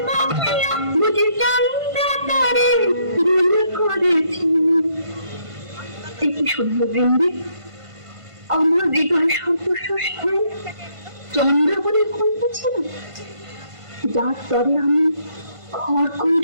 কিয়া, বুঝি চন্দ্র তারে গুণ করেছি। কি শুনল বৃন্দে, আমার হৃদয় সর্বস্বস্থান চন্দ্র বলে কইতেছিল, যার তরে আমি ঘর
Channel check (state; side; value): late; left; 1.5 ms